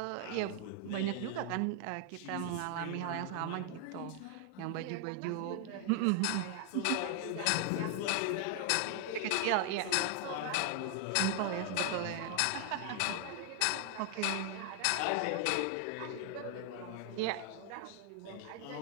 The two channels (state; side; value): different; both; correlation 0.00